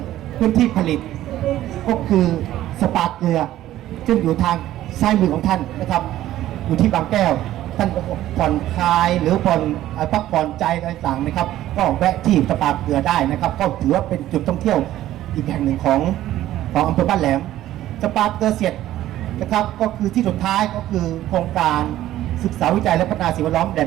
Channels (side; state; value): left; quieter; 13.8 dB